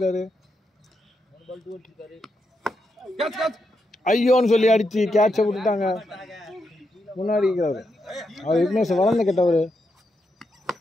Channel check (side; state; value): both; normal; correlation 0.83